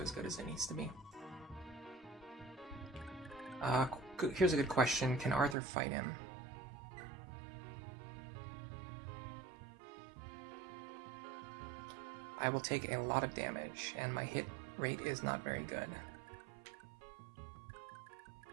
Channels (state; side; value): drops out; left; at 5.6 s